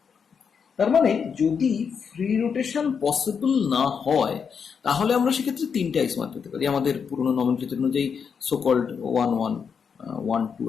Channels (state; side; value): quieter; right; 6.5 dB